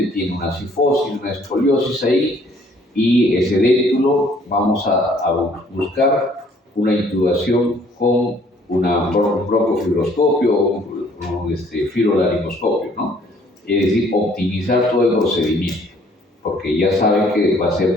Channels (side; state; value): both; normal; correlation 0.60